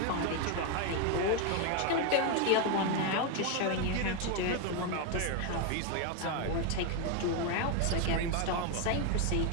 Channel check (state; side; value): different; both; correlation 0.01